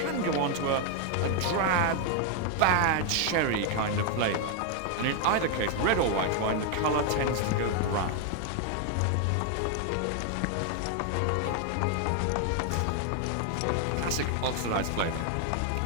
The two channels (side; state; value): both; different; correlation 0.00